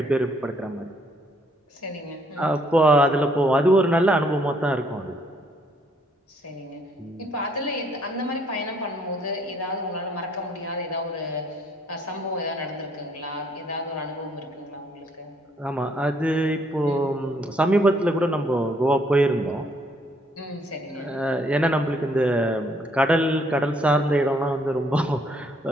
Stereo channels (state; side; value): normal; both; correlation 0.67